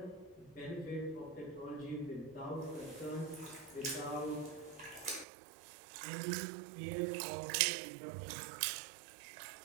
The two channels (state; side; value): drops out; left; at 5.2 s